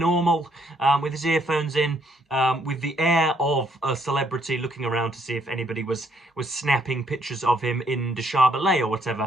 with his earphones in, with the air of a celebrity, looking around to see if anybody was snapping pictures of him in Deshabelais or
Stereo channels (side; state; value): both; normal; correlation 0.69